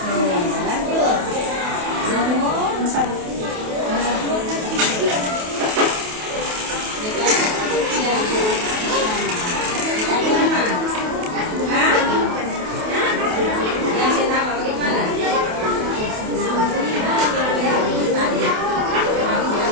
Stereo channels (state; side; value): late; left; 28 ms